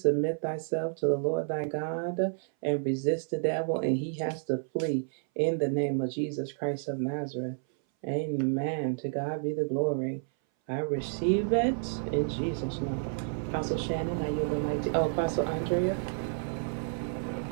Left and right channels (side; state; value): left; silent; 58 dB below the other